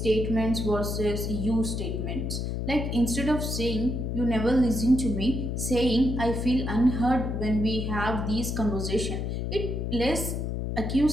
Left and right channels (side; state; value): left; noise; hum, 2 dB below the sound